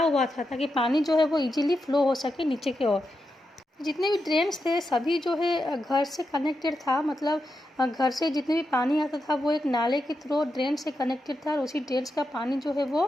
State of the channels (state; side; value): normal; both; correlation 0.86